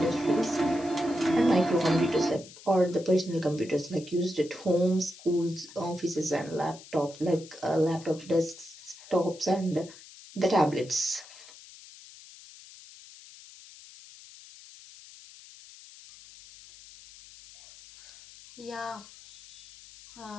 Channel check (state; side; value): noise; left; hiss, 19 dB below the sound